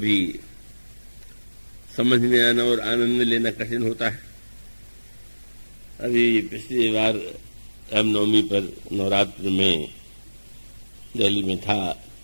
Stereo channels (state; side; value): inverted; both; correlation -1.00